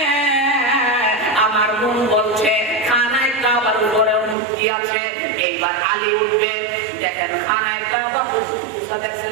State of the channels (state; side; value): drops out; left; at 4.4 s